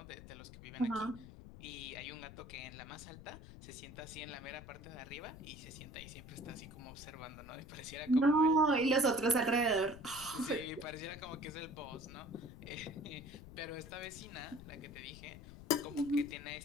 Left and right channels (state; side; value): noise; left; rumble, 15 dB below the sound